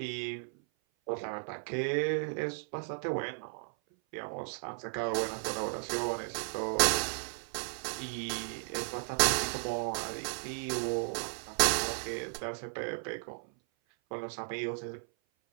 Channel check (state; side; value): silent; left; 55 dB below the other